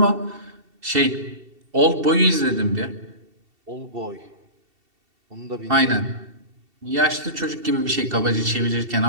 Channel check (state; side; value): late; left; 2.7 ms